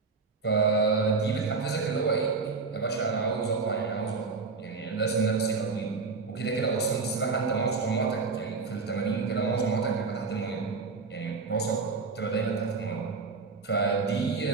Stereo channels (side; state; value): left; quieter; 4.5 dB